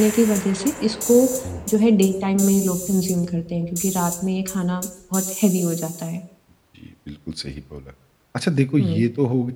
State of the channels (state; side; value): identical; both; correlation 1.00